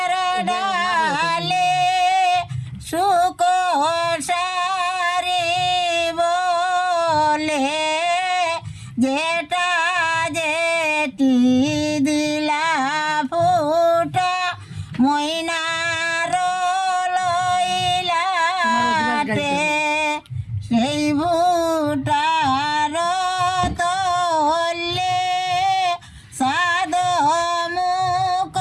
ডালে সুখ সারি বলে যেটা যেটি দিলা ফুটা ময়নার লইলাতে সেই ভুটার তলে সাদ মুখ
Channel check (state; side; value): identical; both; correlation 1.00